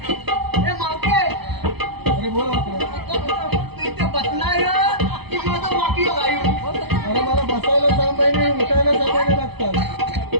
मावते अरे बोला वाकड्या. तू इथे बसणार की माझं वाकी गायू अरे मला बसायला 6 महिने उठायला 6 महिने लागतात.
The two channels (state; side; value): late; left; 0.98 ms